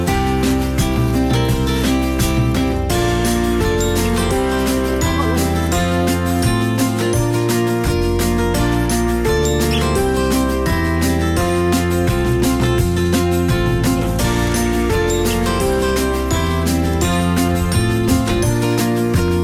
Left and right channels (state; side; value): identical; both; correlation 1.00